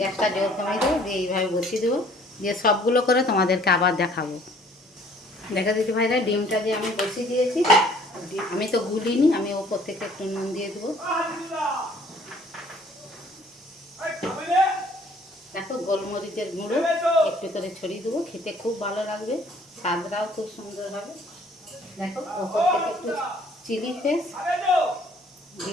জোর কমিয়ে দেবো, দিয়ে এইভাবে বসিয়ে দেবো। দিয়ে সবগুলো করে তোমাদেরকে আবার দেখাবো। দেখা দিতে ভাইরা, ডিমটা যে আমি বসিয়ে দিয়েছি, আমি তো গুলিনি, আমি ওপর থেকে একটু নুন দিয়ে দেবো। দেখো গোলমরিচের গুঁড়ো একটু করে ছড়িয়ে দেবো, খেতে খুব ভালো লাগবে, স্বাদটাও খুব সুন্দর হবে। দেখো ওপর থেকে একটু চিলি ফ্লেক্স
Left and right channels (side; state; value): both; normal; correlation 0.57